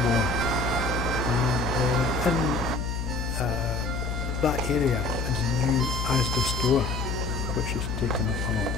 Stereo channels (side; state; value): left; noise; hum, 3 dB below the sound